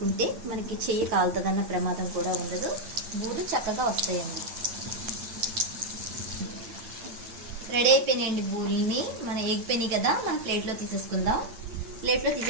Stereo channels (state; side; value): late; left; 9.2 ms